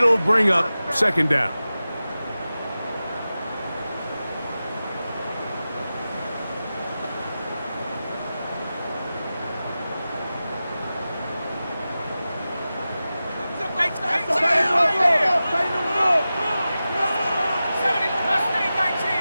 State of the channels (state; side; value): inverted; both; correlation -0.94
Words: bring up 2nd down.